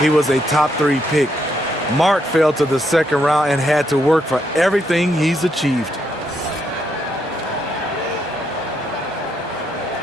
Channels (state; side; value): normal; both; correlation 0.77